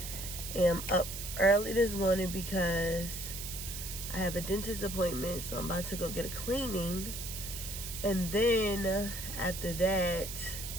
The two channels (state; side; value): noise; right; hiss, 7 dB below the sound